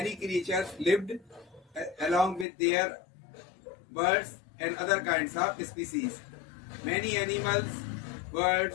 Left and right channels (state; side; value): drops out; right; at 2.5 s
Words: creatures lived along with their birds and other kinds of species. Many animals,